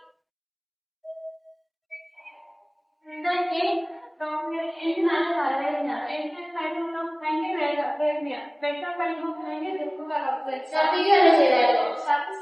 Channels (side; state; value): both; identical; correlation 1.00